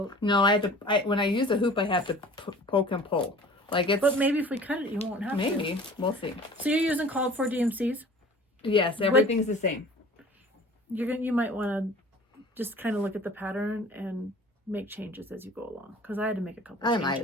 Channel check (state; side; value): normal; both; correlation 0.45